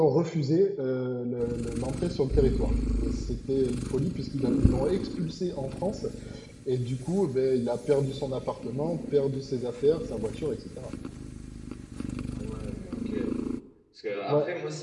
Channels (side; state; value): both; identical; correlation 1.00